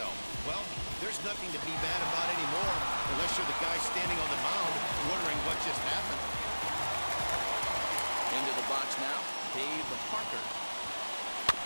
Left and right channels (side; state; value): both; inverted; correlation -1.00